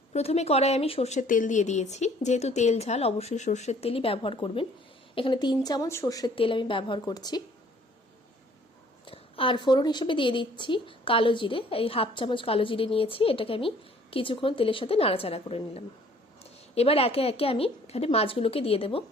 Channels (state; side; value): normal; both; correlation 0.57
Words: প্রথমে কড়াই আমি সর্ষের তেল দিয়ে দিয়েছি। যেহেতু তেল ঝাল অবশ্যই সর্ষের তেলই ব্যবহার করবেন। এখানে 3 চামচ সর্ষের তেল আমি ব্যবহার করছি। আর ফোড়ন হিসেবে দিয়ে দিচ্ছি কালো জিরে। এই হাফ চামচ কালো জিরে নিয়েছি, এটাকে আমি কিছুক্ষণ তেলের সাথে নাড়াচাড়া করে নিলাম। এবার একে একে আমি এখানে মাছগুলোকে দিয়ে দেবো।